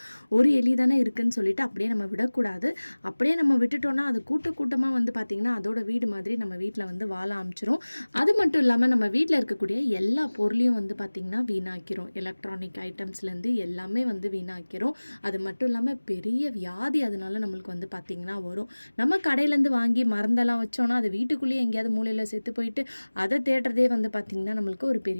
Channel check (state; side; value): inverted; both; correlation -1.00